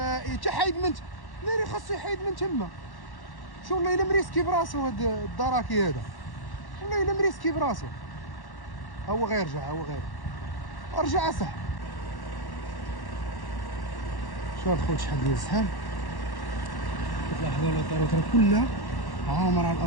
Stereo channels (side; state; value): right; late; 1.1 ms